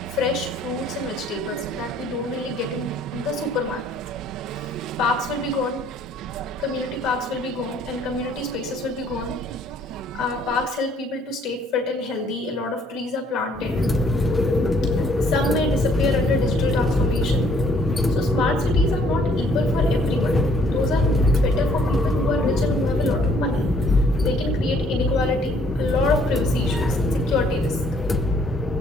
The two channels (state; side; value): normal; both; correlation 0.63